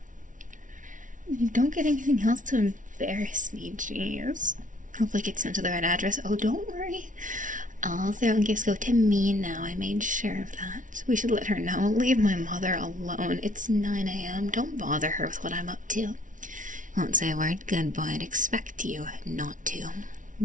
You don't get anything else to embarrass me, jeez. Hopefully it gets sent to the right address. Oh, don't worry. All Throne gifts go to me now. I made sure of that. We should let her know. Leave my mother alone. It's 9 a.m. Don't bother her with what I'm up to. Won't say a word. Good boy. I'd expect you not to.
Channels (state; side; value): late; left; 0.38 ms